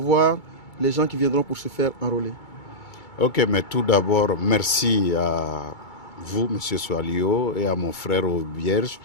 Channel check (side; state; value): right; late; 2.3 ms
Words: les gens qui viendront pour se faire enrôler? Ok, mais tout d'abord, merci à vous, M. Swalio, et à mon frère Aubierge